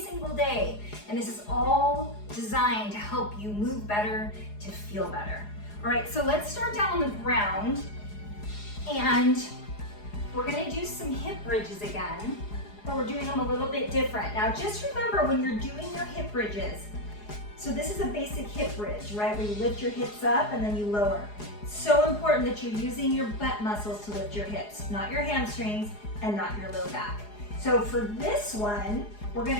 day. And this is all designed to help you move better, to feel better. All right, so let's start down on the ground and we're gonna do some hip bridges again, but we're doing them a little bit different. Now just remember when you're doing your hip bridges, so this is a basic hip bridge, right? Where you lift your hips up and then you lower. It's so important that you're using your butt muscles to lift your hips, not your hamstrings and not your low back. So for this one, we're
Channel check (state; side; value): late; right; 4.8 ms